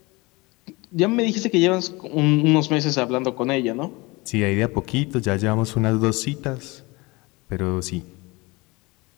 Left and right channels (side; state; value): right; quieter; 24.3 dB